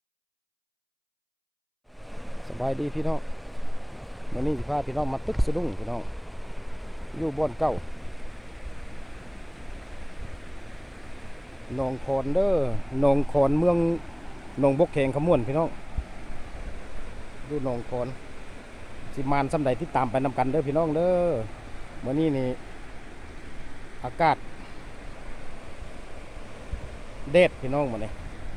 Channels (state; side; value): identical; both; correlation 1.00